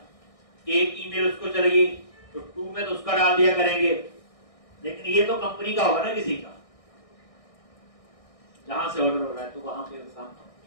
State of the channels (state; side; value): late; right; 1.6 ms